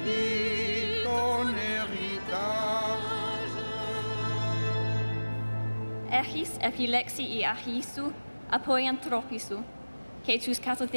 ton héritage. Echis epilexi I achisu, apoiantropisu, que tus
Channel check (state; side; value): inverted; both; correlation -1.00